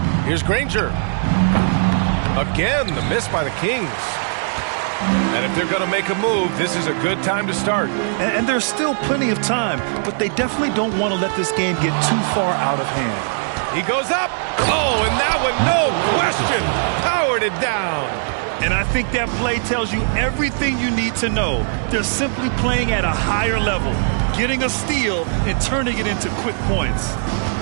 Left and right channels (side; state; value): left; silent; digital silence